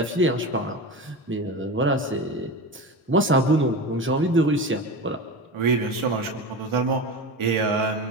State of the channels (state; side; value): normal; both; correlation 0.26